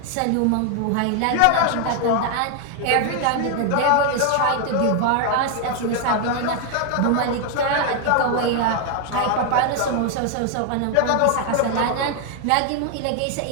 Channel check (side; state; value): both; different; correlation 0.00